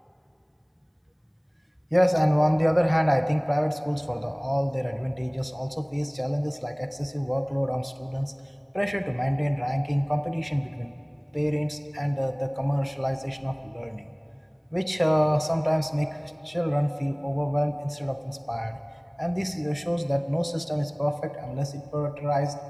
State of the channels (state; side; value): identical; both; correlation 1.00